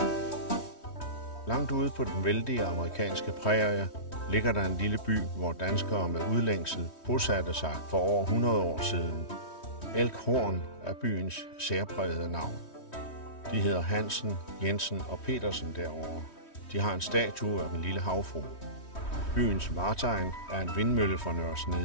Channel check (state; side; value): late; right; 3.1 ms